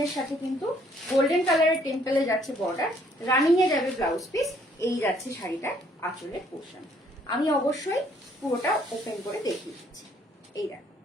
সাথে কিন্তু গোল্ডেন কালারের টেম্পলে যাচ্ছে বর্ডার, রানিং এ যাবে ব্লাউজ পিস। এই যাচ্ছে শাড়িটার আঁচলের পোর্শন। আমি অবশ্যই পুরোটা ওপেন করে দেখিয়ে দিচ্ছি। এই দেখো,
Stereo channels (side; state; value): both; normal; correlation 0.64